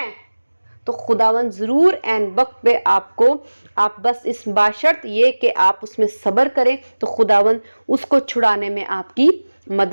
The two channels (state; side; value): inverted; both; correlation -1.00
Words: तो खुदावन जरूर एन वक्त पे आपको, आप बस इस बाशर्त ये कि आप उसमें सब्र करें, तो खुदावन उसको छुड़ाने में आपकी